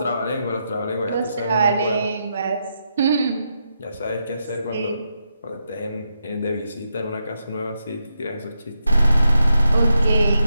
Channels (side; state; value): both; inverted; correlation -0.83